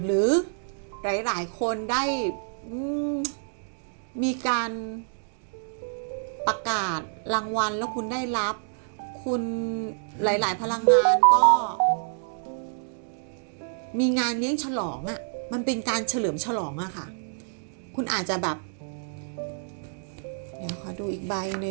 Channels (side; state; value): left; silent; digital silence